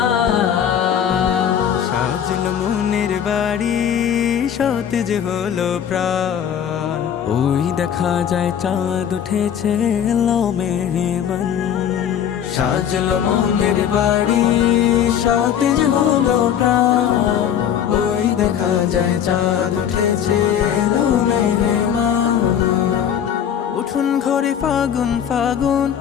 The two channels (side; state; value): right; quieter; 9.0 dB